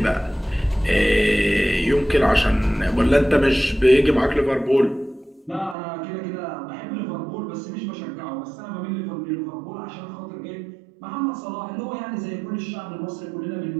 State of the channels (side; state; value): left; drops out; at 5.8 s